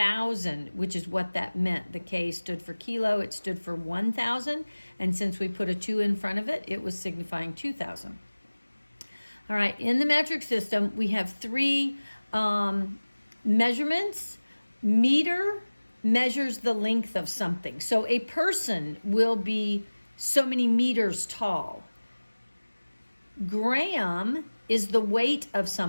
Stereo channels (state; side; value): inverted; both; correlation -1.00